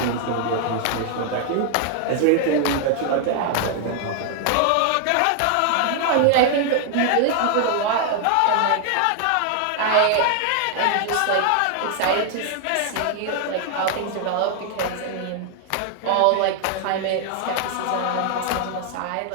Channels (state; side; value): different; both; correlation 0.00